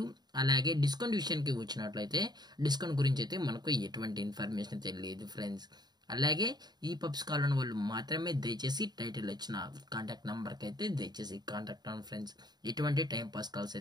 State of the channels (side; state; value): left; late; 0.20 ms